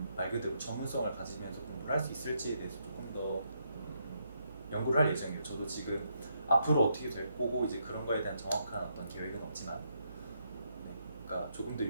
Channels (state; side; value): inverted; both; correlation -0.77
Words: 말 그대로 전문성을 가지면서 공부를 할 수 있을지에 대해서 조금 더 연구를 할 예정이에요. 저도 지금 앞으로 어떻게 될 거고 이제 그런 거에 대한 정확한 어떤 계획은 없지만 네, 그러니까 조금 더